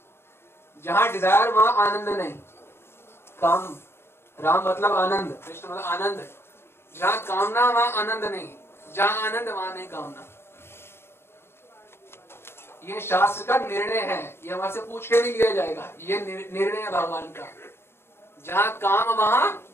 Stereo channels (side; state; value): right; late; 0.12 ms